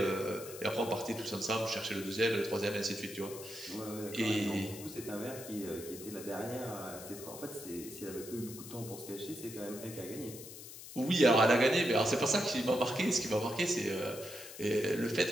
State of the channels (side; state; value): left; noise; hiss, 13 dB below the sound